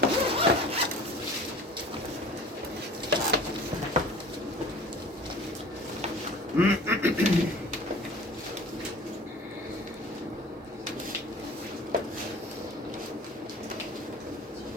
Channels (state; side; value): normal; both; correlation 0.43